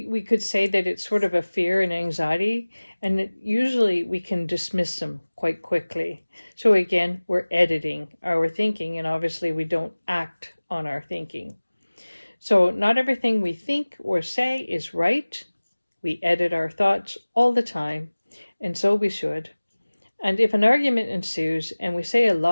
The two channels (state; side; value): inverted; both; correlation -1.00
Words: could say that it's sort of a fear and anxiety, and that usually we can dismiss them quite quickly. So again, we're editing our thinking, and obviously we don't act on our thinking. So not everything we think or say is right. We edit our thoughts all the time, and so we should. And if an argument ensues and we say a